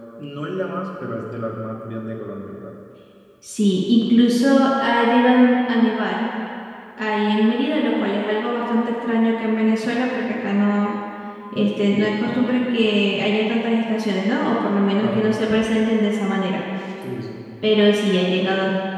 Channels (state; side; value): identical; both; correlation 1.00